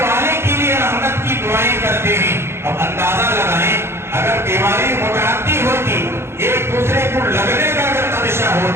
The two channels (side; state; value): left; late; 0.12 ms